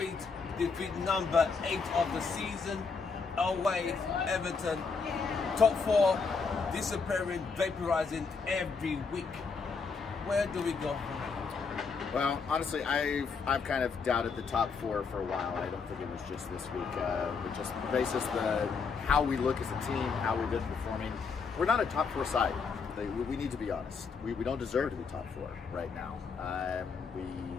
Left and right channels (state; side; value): quieter; right; 5.1 dB